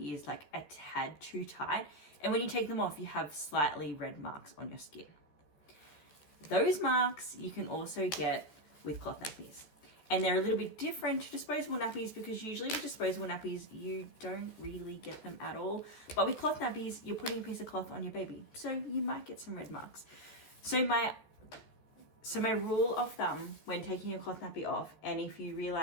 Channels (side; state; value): right; late; 14 ms